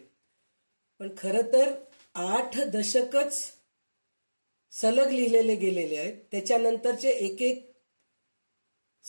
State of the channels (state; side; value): inverted; both; correlation -1.00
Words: पण खरं तर 8 दशकच सलग लिहिलेले गेलेले आहेत. त्याच्यानंतरचे एक एक